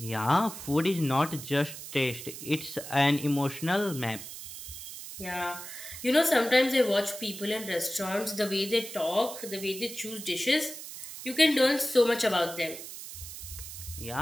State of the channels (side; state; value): right; noise; hiss, 11 dB below the sound